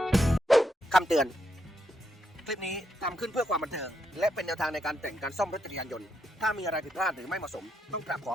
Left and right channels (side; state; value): both; normal; correlation 0.80